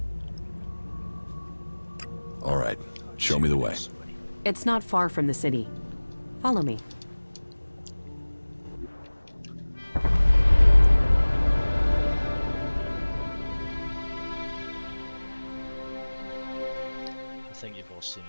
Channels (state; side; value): inverted; both; correlation -1.00